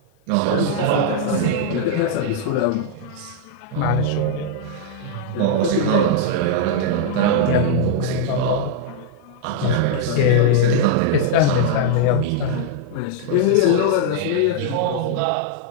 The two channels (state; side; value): different; both; correlation -0.01